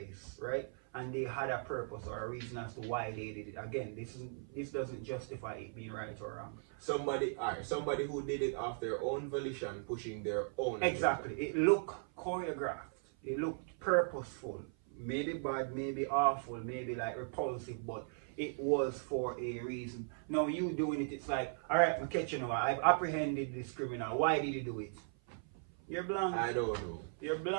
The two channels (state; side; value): silent; left; 52 dB below the other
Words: right? And they had a purpose or a reason as to why they did it. Again, this doesn't justify it being right or wrong. Somebody who did it of their own volition, pushing their own. Exactly. Agenda. It looked choreographed. It looked purposeful. Maybe bad, maybe awful, maybe like repulsive, but it was for a reason. Now you doing it, it's like, all right, I'm catching you. I've apprehended this criminal. Why did he do it? You're blank. I don't know. You're